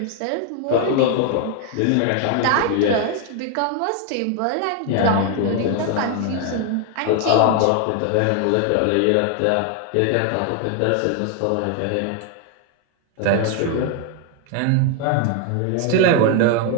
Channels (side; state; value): both; different; correlation 0.01